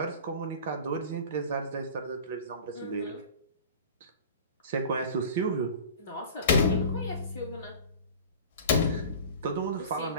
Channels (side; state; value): both; inverted; correlation -0.38